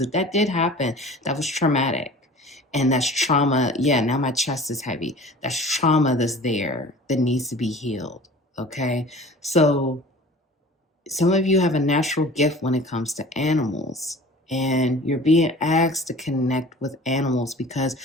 if that did happen, that was traumatic. And that's trauma. Yeah, now my chest is heavy. That's trauma that's there that needs to be healed. Okay? So some of you have a natural gift when it comes to animals, and you're being asked to connect with animals because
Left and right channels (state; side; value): normal; both; correlation 0.43